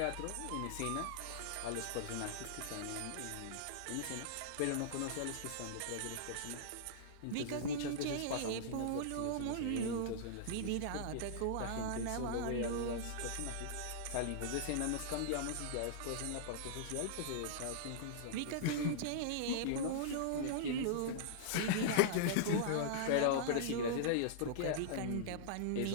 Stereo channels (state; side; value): different; both; correlation -0.02